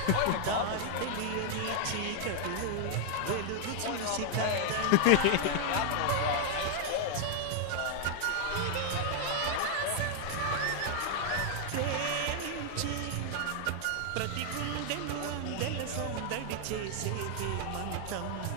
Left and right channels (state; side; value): different; both; correlation 0.00